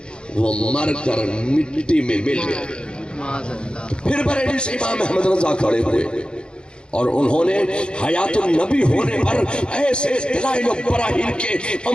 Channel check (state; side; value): late; right; 0.052 ms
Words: وہ مر کر مٹی میں مل گیا۔ پھر بریلی سے امام احمد رضا کھڑے ہوئے اور انہوں نے حیات النبی ہونے پر ایسے دلائل و براہین کے